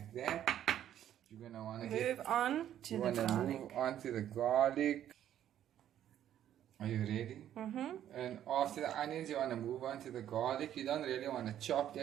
that, you're going to want to move on to the garlic. Are you ready? Mm-hmm. And after the onions, you want to move on to the garlic. You don't really want to chop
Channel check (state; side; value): quieter; left; 11.0 dB